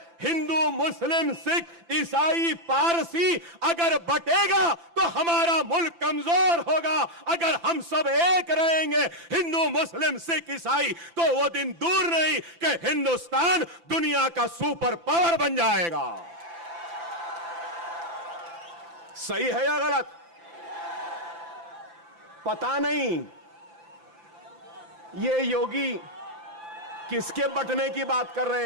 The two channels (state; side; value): late; left; 5.9 ms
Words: हिंदू, मुस्लिम, सिख, ईसाई, पारसी अगर बटेगा तो हमारा मुल्क कमजोर होगा। अगर हम सब एक रहेंगे, हिंदू, मुस्लिम, सिख, ईसाई, तो वो दिन दूर नहीं कि हिंदुस्तान दुनिया का सुपर पावर बन जाएगा। सही है या गलत? पता नहीं ये योगी किसके बटने की बात कर